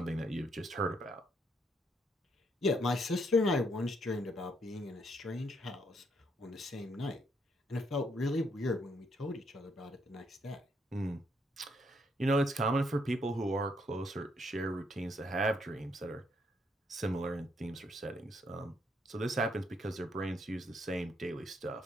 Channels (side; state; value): both; normal; correlation 0.73